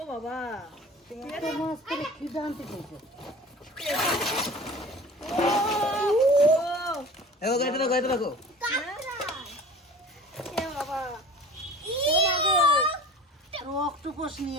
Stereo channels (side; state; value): both; normal; correlation 0.41